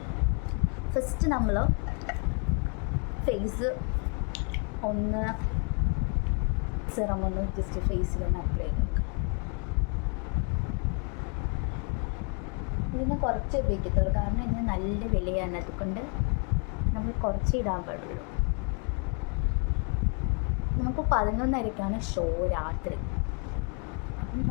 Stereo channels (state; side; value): quieter; right; 37.1 dB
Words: ഫസ്റ്റ് നമ്മൾ ഫേസ് ഒന്ന് സിറം ഒന്ന് ജസ്റ്റ് ഫേസിലൊന്ന് അപ്ലൈ ചെയ്ത് നോക്കാം. ഇതിന് കുറച്ച് ഉപയോഗിക്കത്തുള്ളൂ, കാരണം ഇതിന് നല്ല വിലയാണ്. അതുകൊണ്ട് നമ്മൾ കുറച്ച് ഇടാൻ പാടുള്ളൂ. നമുക്ക് 11:30 ഷോ രാത്രി.